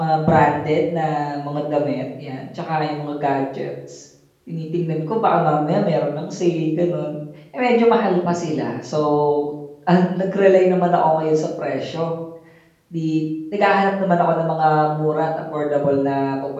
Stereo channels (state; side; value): identical; both; correlation 1.00